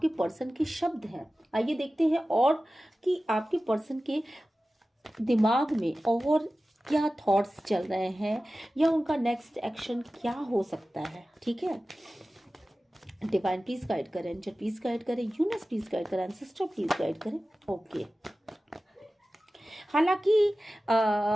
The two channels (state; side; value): normal; both; correlation 0.96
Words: पर्सन के शब्द हैं। आइए देखते हैं और कि आपके पर्सन के दिमाग में और क्या थॉट्स चल रहे हैं, या उनका नेक्स्ट एक्शन क्या हो सकता है। ठीक है, डिवाइन प्लीज गाइड करें, एंजल प्लीज गाइड करें, यूनिवर्स प्लीज गाइड करें, एंसेस्टर प्लीज गाइड करें। ओके, हालांकि